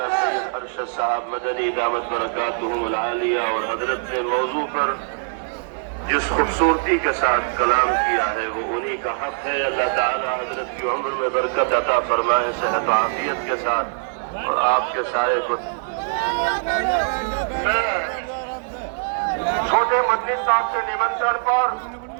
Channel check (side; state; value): left; silent; digital silence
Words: سید ارشد صاحب مدنی دامت برکاتہم العالیہ، اور حضرت نے موضوع پر جس خوبصورتی کے ساتھ کلام کیا ہے وہ انہی کا حق ہے. اللہ تعالی حضرت کی عمر میں برکت عطا فرمائے، صحت و عافیت کے ساتھ، اور آپ کے سائے کو. چھوٹے مدنی صاحب کے نمنترن پر